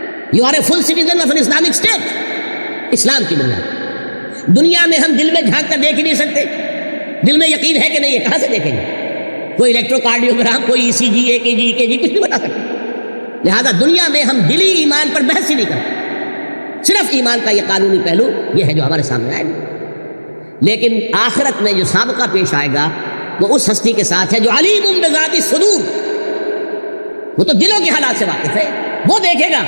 You are a full citizen of an Islamic state. اسلام کی بنیاد. دنیا میں ہم دل میں جھانک کر دیکھ ہی نہیں سکتے. دل میں یقین ہے کہ نہیں ہے, کہاں سے دیکھیں گے؟ کوئی الیکٹروکارڈیوگرام, کوئی ECG, EKG کچھ نہیں بتا سکتے. لہذا دنیا میں ہم دلی ایمان پر بحث ہی نہیں کرتے. صرف ایمان کا یہ قانونی پہلو یہ ہے جو ہمارے سامنے آئے گا. لیکن آخرت میں جو سابقہ پیش آئے گا وہ اس ہستی کے ساتھ ہے جو علیم بذات الصدور. وہ تو دلوں کے حالات سے واقف ہے. وہ دیکھے گا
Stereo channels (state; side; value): inverted; both; correlation -1.00